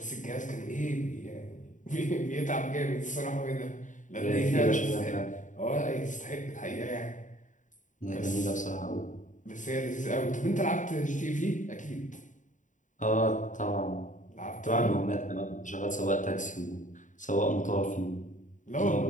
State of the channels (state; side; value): late; right; 0.37 ms